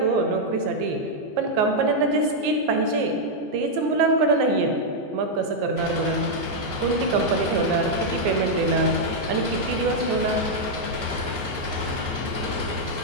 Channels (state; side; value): late; left; 14 ms